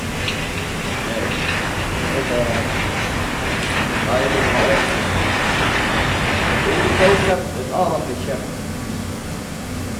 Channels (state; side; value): identical; both; correlation 1.00